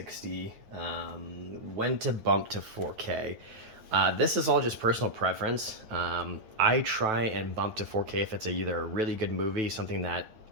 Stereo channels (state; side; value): late; left; 9.1 ms